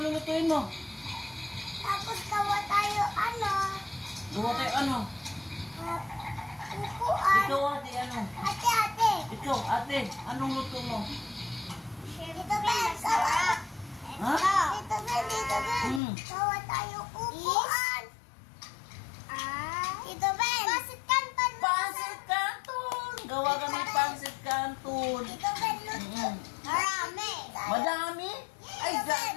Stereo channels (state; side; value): drops out; right; at 16.0 s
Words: lulutuin mo? Tapos gawa tayo, Gawa tayo ano? Upuan. Ikaw, ate, ano? Ate. Ikaw, ate, anong luto mo? Dito, Ben. Masarap. Ha? Dito, Ben. Gawa tayo upuan. Dito, Ben. Pasit Canton. Pancit Canton! Gawa kami pancit Canton. Dito, Ben. Luto. Marami. Madami? Ay,